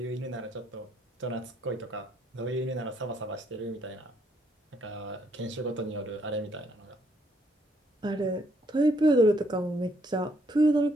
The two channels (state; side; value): normal; both; correlation 0.70